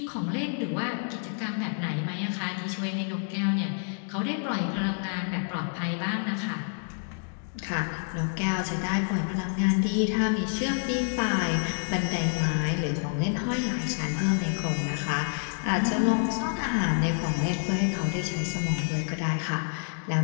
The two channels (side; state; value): right; silent; 59 dB below the other